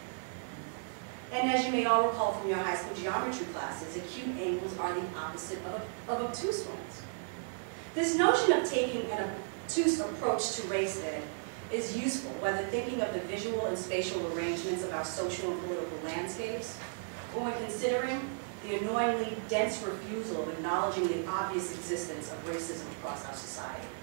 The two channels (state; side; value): silent; left; 55 dB below the other